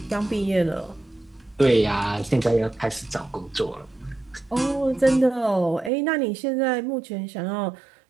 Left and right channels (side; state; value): left; drops out; at 5.9 s